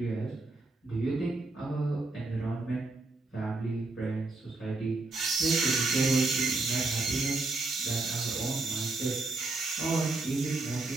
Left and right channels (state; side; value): quieter; left; 3.3 dB